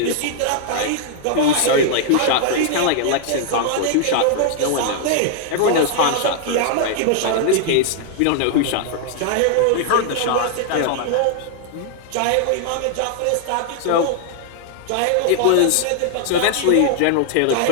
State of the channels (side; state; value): both; different; correlation 0.00